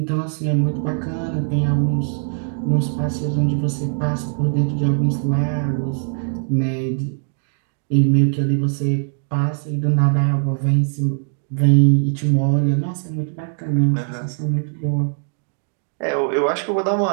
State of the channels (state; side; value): silent; left; digital silence